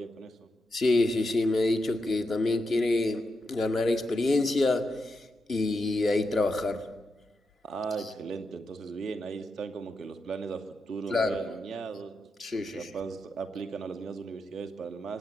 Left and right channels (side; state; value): both; normal; correlation 0.86